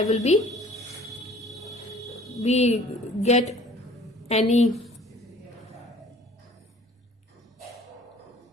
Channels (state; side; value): normal; both; correlation 0.51